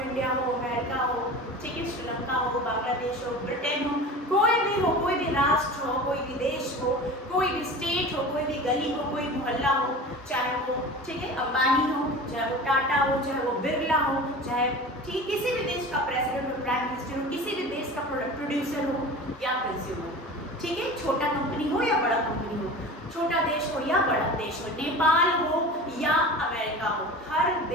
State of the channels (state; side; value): normal; both; correlation 0.35